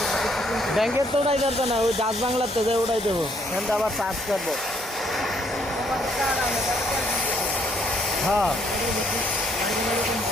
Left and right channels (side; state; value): both; normal; correlation 0.68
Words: ব্যাংকের তো উঠাই যাবে না, ওই ডাচ বাংলার তো যে উঠাই দেবো, এখানটা আবার চার্জ করবো। হ্যাঁ